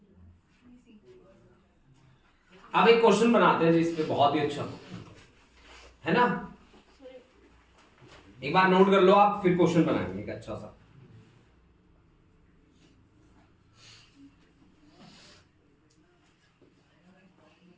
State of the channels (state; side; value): identical; both; correlation 1.00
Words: अब एक क्वेश्चन बनाते हैं जिस पे बहुत ही अच्छा है ना, एक बार नोट कर लो आप, फिर क्वेश्चन बनाएंगे एक अच्छा सा।